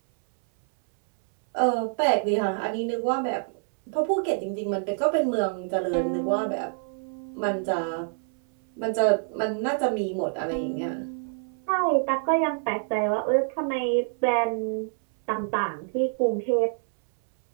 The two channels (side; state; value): left; silent; 61 dB below the other